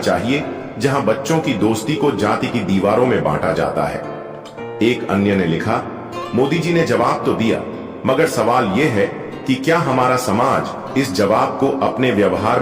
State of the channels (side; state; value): both; identical; correlation 1.00